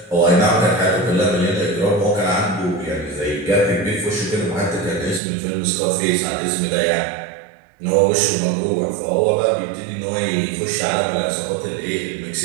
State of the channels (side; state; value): left; drops out; at 5.2 s